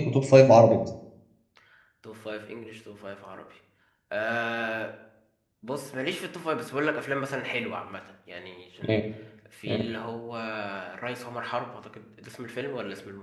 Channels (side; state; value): both; identical; correlation 1.00